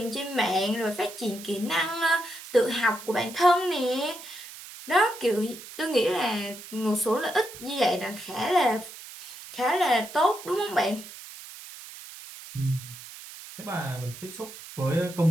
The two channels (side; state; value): right; noise; hiss, 14 dB below the sound